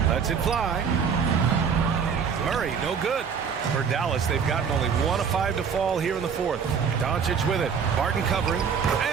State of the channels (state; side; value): quieter; left; 6.6 dB